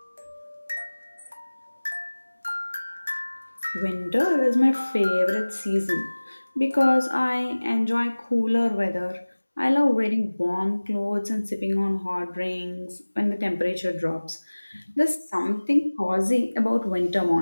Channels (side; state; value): both; inverted; correlation -1.00